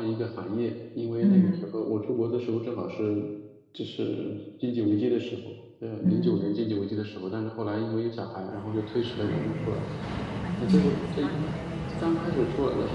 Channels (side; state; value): both; identical; correlation 1.00